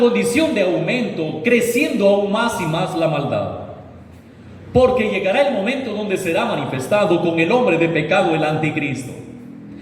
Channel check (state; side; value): identical; both; correlation 1.00